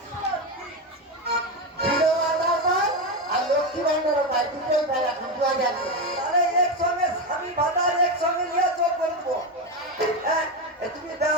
ভিড়ও আদার পায় আর লক্ষ্মী ভান্ডারও পায় দুটোই পায় এখন 2000 তাহলে একসঙ্গে স্বামী ভাতা একসঙ্গে নিয়ে চোখ করবো হ্যাঁ এ তুমি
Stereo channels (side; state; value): both; normal; correlation 0.13